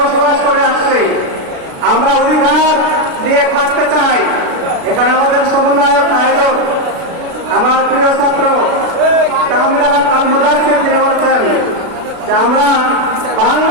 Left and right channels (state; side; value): late; left; 36 ms